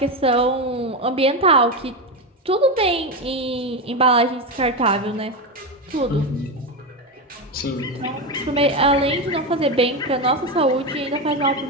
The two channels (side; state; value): both; normal; correlation 0.13